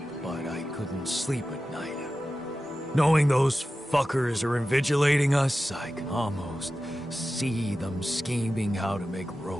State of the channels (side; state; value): both; normal; correlation 0.94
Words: but I couldn't sleep at night. Knowing those fuckers are invigilating us, I can almost see them scheming how to make